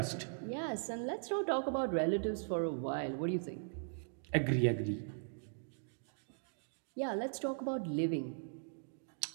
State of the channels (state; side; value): silent; left; digital silence